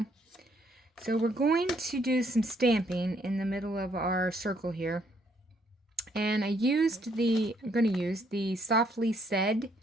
So we're going to do some stamping in the middle of our circle here. And I'm going to use the Softly Said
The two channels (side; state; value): both; normal; correlation 0.69